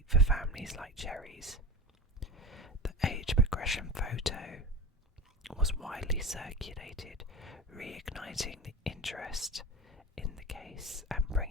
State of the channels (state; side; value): normal; both; correlation 0.28